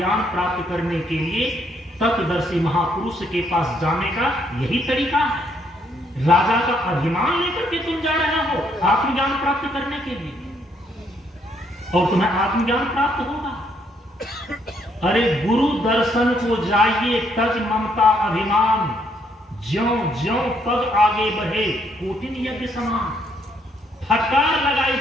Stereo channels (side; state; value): both; normal; correlation 0.71